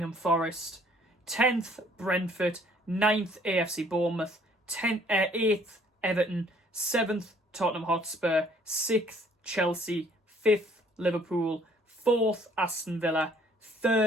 Forest. 10th, Brentford. 9th, AFC Bournemouth. 8th, Everton. 7th, Tottenham Hotspur. 6th, Chelsea. 5th, Liverpool. 4th, Aston Villa.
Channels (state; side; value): normal; both; correlation 0.59